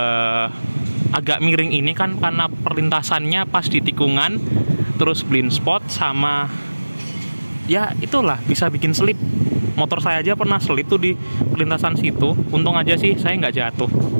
agak miring ini kan, karena perlintasannya pas di tikungan, terus blind spot sama ya itulah bisa bikin selip. Motor saya aja pernah selip tuh di perlintasan situ. Untung aja sih saya nggak jatuh.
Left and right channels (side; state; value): both; inverted; correlation -1.00